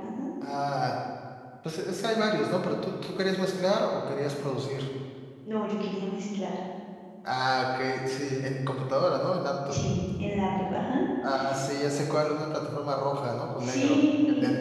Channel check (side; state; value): both; identical; correlation 1.00